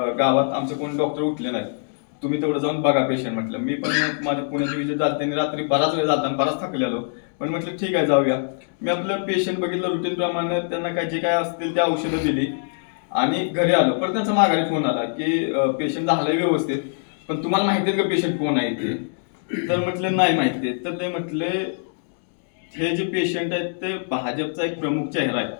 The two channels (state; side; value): silent; right; digital silence